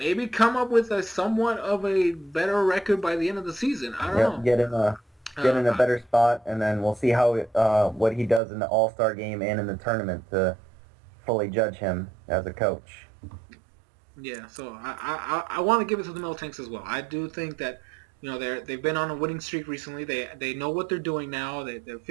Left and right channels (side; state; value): left; drops out; at 8.4 s